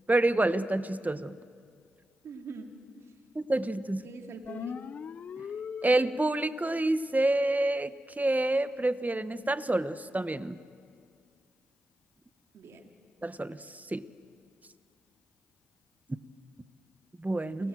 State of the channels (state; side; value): normal; both; correlation 0.91